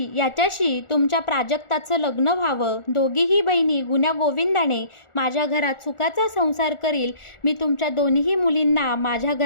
याच्याशी तुमच्या प्राजक्ताचं लग्न व्हावं. दोघीही बहिणी गुण्यागोविंदाने माझ्या घरात सुखाचा संसार करील. मी तुमच्या दोन्ही मुलींना माझ्या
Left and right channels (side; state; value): right; late; 1.4 ms